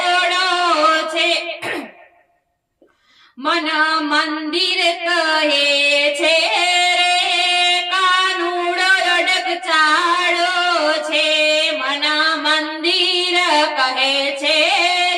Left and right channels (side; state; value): both; identical; correlation 1.00